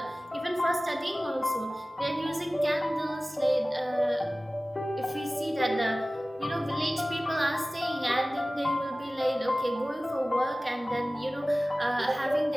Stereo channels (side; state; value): both; normal; correlation 0.97